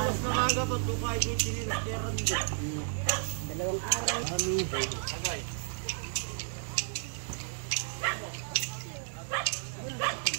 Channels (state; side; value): silent; left; digital silence